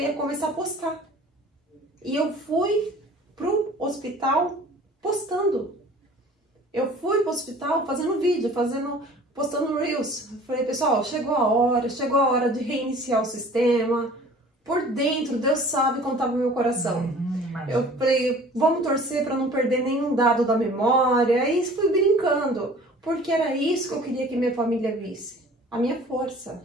começar a postar. E eu fui pro hospital postando. Eu fui pro hospital fazendo vídeo, postando Reels. Falei, pessoal, chegou a hora de reiniciar o sistema. Por dentro, Deus sabe como estava o meu coração. Eu falei, vamos torcer para não perder nenhum dado da memória. Aí fui brincando, porque era isso que eu queria que minha família visse. A minha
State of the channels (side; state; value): both; normal; correlation 0.48